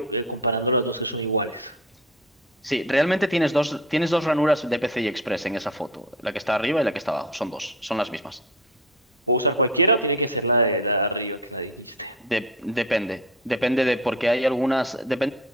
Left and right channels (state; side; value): normal; both; correlation 0.31